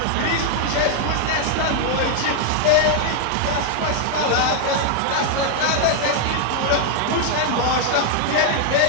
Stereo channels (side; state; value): both; different; correlation 0.00